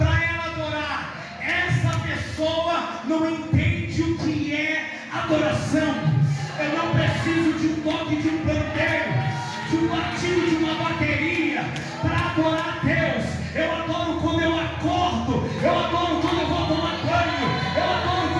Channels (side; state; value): both; identical; correlation 1.00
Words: ela adorar. Essa pessoa não entende o que é adoração. Eu não preciso de um toque de um pandeiro, de um batido de uma bateria para adorar a Deus. Eu adoro quando eu acordo, eu adoro quando eu vou tomar banho, eu adoro